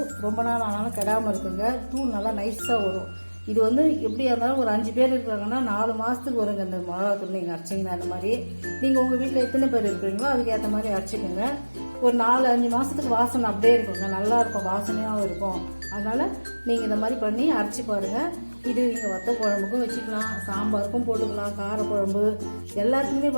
ரொம்ப நாள் ஆனாலும் கெடாமல் இருக்குங்க. தூள் நல்லா நைஸாக வரும். இது வந்து எப்படியா இருந்தாலும் ஒரு 5 பேர் இருக்காங்கன்னா 4 மாதத்துக்கு வருங்க இந்த மிளகா தூள் நீங்கள் அரைச்சிங்கன்னா. அந்த மாதிரி நீங்கள் உங்கள் வீட்டில் எத்தனை பேர் இருக்கிறீங்களோ அதுக்கேற்ற மாதிரி அரைச்சிக்கோங்க. ஒரு 4-5 மாதத்துக்கு வாசனை அப்படியே இருக்குங்க, நல்லா இருக்கும், வாசனையாகவும் இருக்கும். அதனால் நீங்கள் இந்த மாதிரி பண்ணி அரைச்சி பாருங்கள். இது நீங்கள் வத்த குழம்புக்கும் வச்சுக்கலாம், சாம்பாருக்கும் போட்டுக்கலாம், காரக்குழம்பு எல்லாத்துக்குமே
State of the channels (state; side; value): inverted; both; correlation -1.00